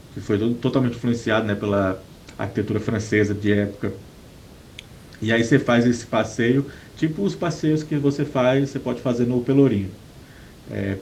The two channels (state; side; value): identical; both; correlation 1.00